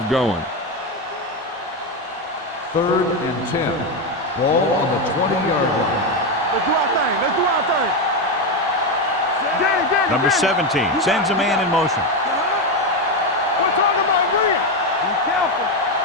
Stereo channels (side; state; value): both; normal; correlation 0.10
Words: going. 3rd and 10. Ball on the 20-yard line. Let's do our thing. Danny, Number 17 sends a man in motion. We're talking about Green. Be careful.